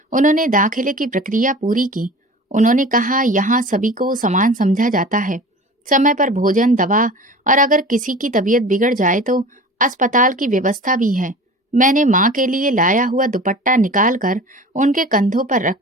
उन्होंने दाखिले की प्रक्रिया पूरी की। उन्होंने कहा, यहाँ सभी को समान समझा जाता है, समय पर भोजन, दवा, और अगर किसी की तबीयत बिगड़ जाए तो अस्पताल की व्यवस्था भी है। मैंने माँ के लिए लाया हुआ दुपट्टा निकाल कर उनके कंधों पर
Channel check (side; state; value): both; normal; correlation 0.38